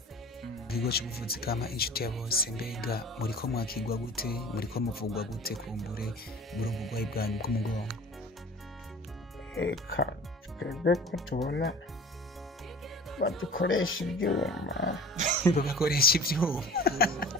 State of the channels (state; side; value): normal; both; correlation 0.41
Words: Ikigo cy'ubuvuzi kama inshuti ya bose, mbega muriko mwakigwa gute, muriko muvugwa gute kumbure muri ubugwayi bwanyu bw'umugongo? Eka twebwe ko tubona badukoresha ibyuma bagakoresha ibyuma